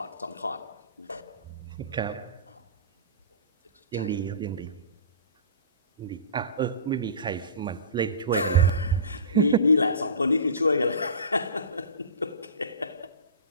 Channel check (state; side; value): inverted; both; correlation -0.35